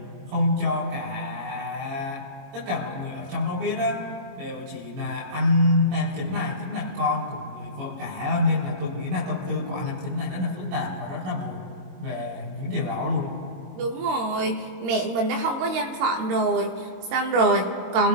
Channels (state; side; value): late; left; 22 ms